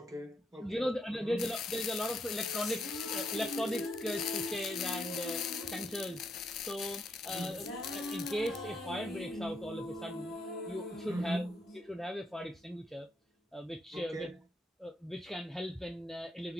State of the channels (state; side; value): normal; both; correlation 0.77